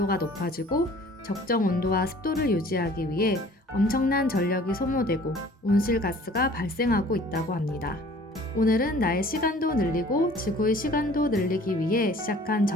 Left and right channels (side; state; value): both; normal; correlation 0.51